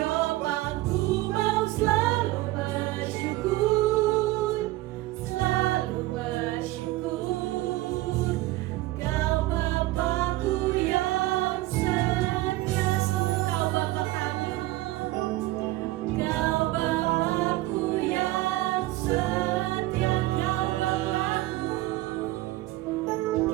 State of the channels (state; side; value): quieter; left; 18.1 dB